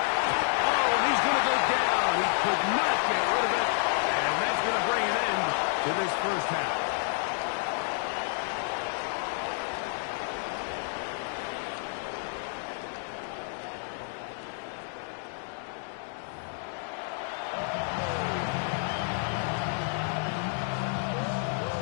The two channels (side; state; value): right; silent; 57 dB below the other